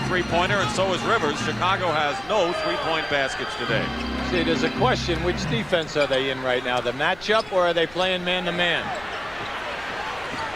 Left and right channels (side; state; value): left; noise; hum, 22 dB below the sound